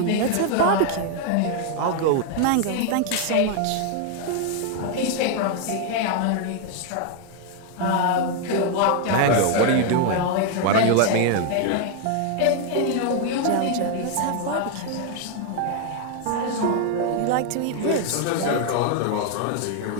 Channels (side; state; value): both; different; correlation 0.01